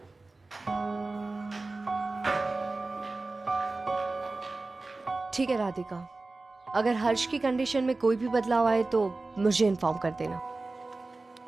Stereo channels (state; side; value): quieter; left; 3.4 dB